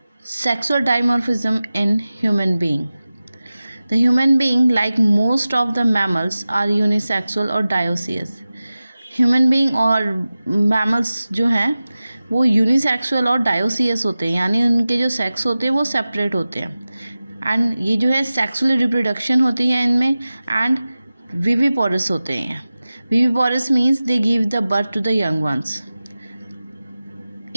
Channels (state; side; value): inverted; both; correlation -0.96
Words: sexual dimorphism in human being. The human being, like most of the mammals, are unisexual or dioecious. Human being और mammals जो हैं वो unisexual और dioecious होते हैं, यानी उनके जो सेक्स होते हैं वो सेपरेट होते हैं. एंड ये जो है सेक्सुअल रिप्रोडक्शन होती है इनमें. एंड विविपोरस होते हैं. Viviparous means they give the birth to the young ones.